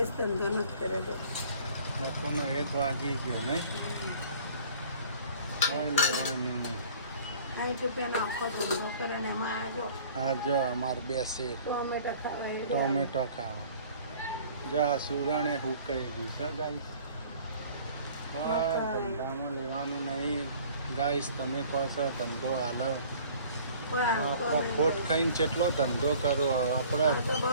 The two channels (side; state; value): both; inverted; correlation -0.50